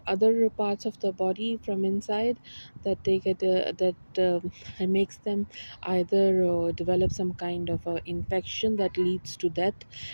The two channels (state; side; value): inverted; both; correlation -1.00